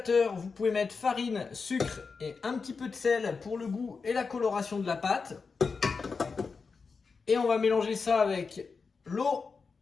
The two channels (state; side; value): quieter; right; 4.9 dB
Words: vous pouvez mettre farine, sucre et un petit peu de sel pour le goût et la coloration de la pâte. Et on va mélanger ça avec l'eau